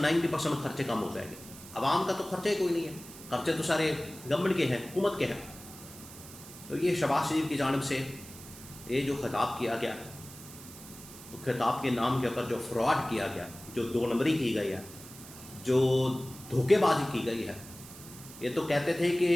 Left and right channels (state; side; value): noise; right; hiss, 16 dB below the sound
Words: 90% خرچے کم ہو جائیں گے. عوام کا تو خرچہ ہی کوئی نہیں ہے، خرچے تو سارے گورنمنٹ کے ہیں، حکومت کے ہیں. تو یہ شہباز شریف کی جانب سے یہ جو خطاب کیا گیا، خطاب کے نام کے اوپر جو فراڈ کیا گیا، جو دو نمبری کی گئی ہے، جو دھوکے بازی کی گئی ہے. یہ تو کہتے تھے کہ